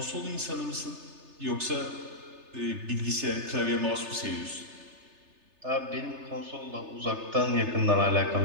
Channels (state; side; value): late; left; 3.3 ms